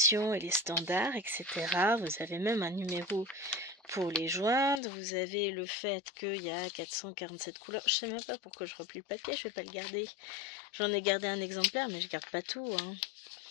et les standards, etc. Vous avez même un numéro pour les joindre. Vous avez le fait qu'il y a 447 couleurs. Je sais même pas pourquoi je replie le papier, je vais pas le garder. J'en ai gardé un exemplaire, mais je garde pas tout. Hein.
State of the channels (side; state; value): right; drops out; at 4.8 s